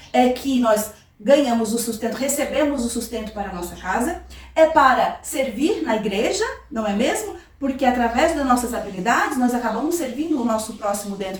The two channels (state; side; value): identical; both; correlation 1.00